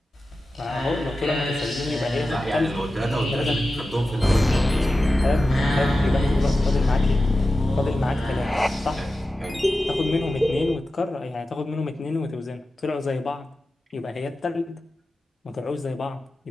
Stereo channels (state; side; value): normal; both; correlation 0.93